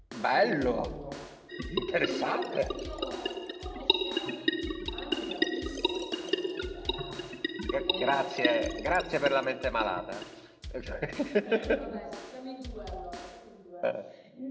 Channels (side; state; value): both; identical; correlation 1.00